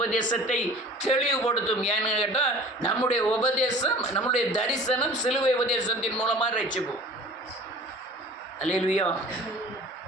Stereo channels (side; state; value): both; normal; correlation 0.44